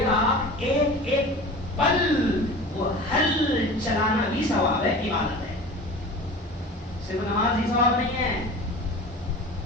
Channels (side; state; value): both; normal; correlation 0.37